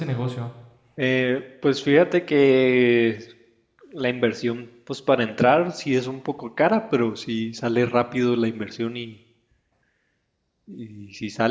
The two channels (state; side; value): identical; both; correlation 1.00